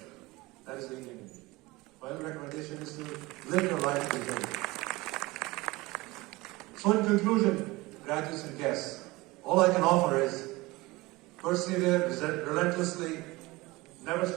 That is the Indian in me. My only recommendation is to live your life with integrity. So in conclusion, graduates and guests, all I can offer is persevere relentlessly, never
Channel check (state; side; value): quieter; left; 21.5 dB